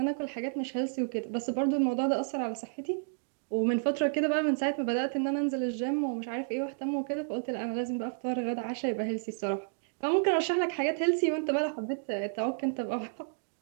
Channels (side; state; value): left; silent; digital silence